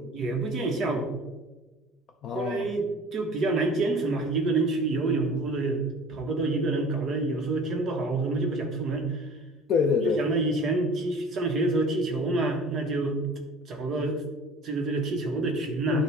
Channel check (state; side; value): normal; both; correlation 0.44